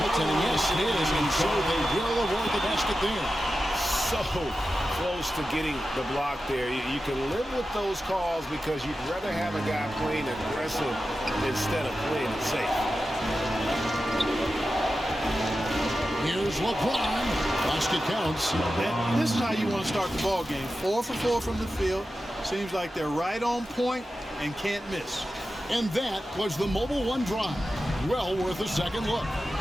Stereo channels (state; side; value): normal; both; correlation 0.92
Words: Yes, it is. And so they will avoid the basket there. So close to getting the block there. You can live with those calls because you'd rather have a guy playing aggressive instead of playing it safe. Here's LeBron. Basket counts. And this is how you want to start the ball game. 4 for 4 from the field. Seems like they're right on point and can't miss. And that was the Mobile One drive. Well worth a second look.